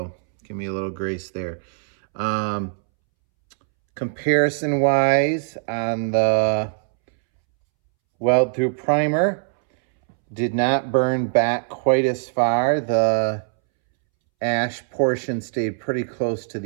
give me a little grace there. Comparison wise, on the weld through primer, did not burn back quite as far. The ash portion stayed pretty close to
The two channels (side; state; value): left; silent; 64 dB below the other